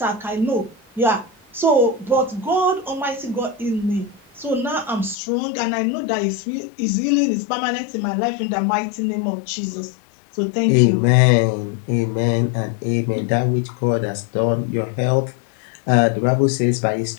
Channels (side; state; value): right; drops out; at 5.2 s